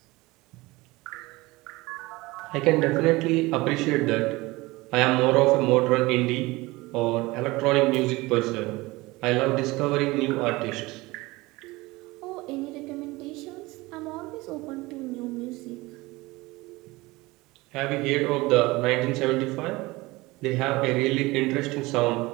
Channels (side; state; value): left; quieter; 21.4 dB